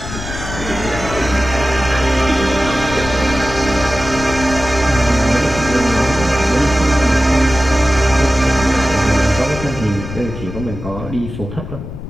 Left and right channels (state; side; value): noise; left; rumble, 9 dB below the sound